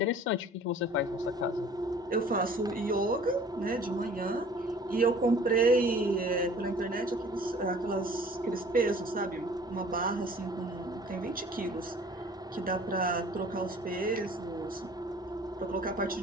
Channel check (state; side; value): normal; both; correlation 0.50